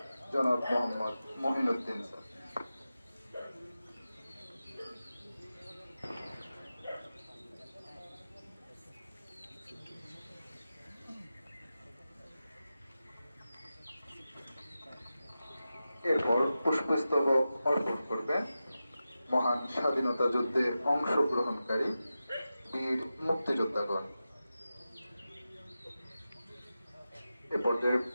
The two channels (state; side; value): inverted; both; correlation -0.92